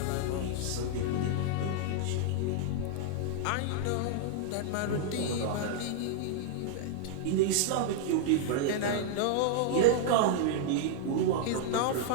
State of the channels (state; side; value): different; both; correlation -0.01